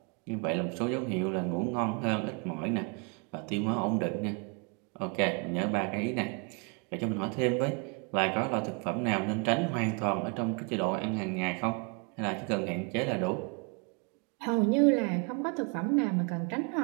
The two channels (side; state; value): left; quieter; 33.1 dB